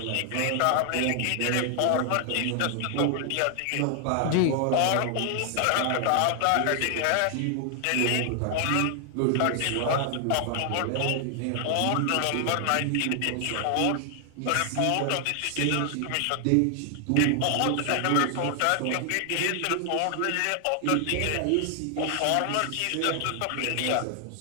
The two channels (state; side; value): different; both; correlation 0.00